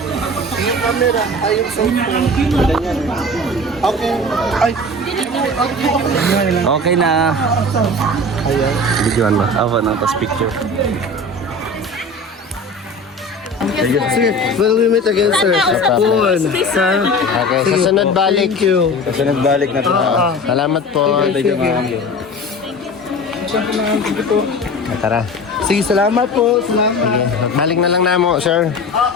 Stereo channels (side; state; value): both; normal; correlation 0.35